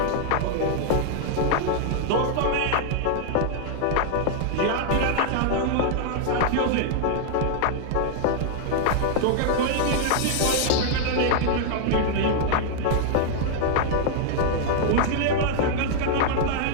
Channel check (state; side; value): different; both; correlation -0.01